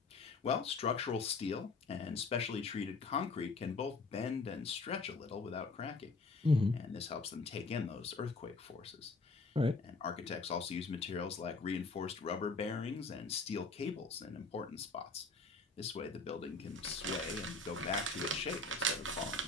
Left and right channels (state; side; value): quieter; right; 3.7 dB